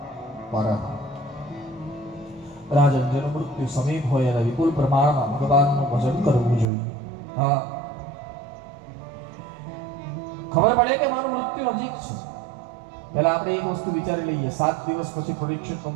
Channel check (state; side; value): drops out; left; at 6.7 s